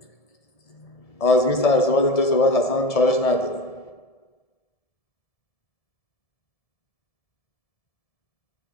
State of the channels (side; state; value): right; late; 1.7 ms